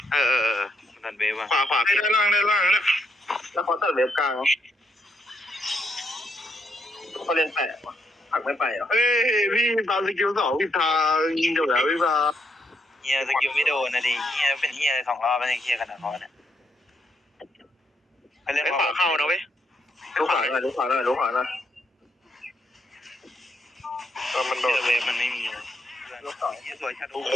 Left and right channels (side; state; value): both; normal; correlation 0.76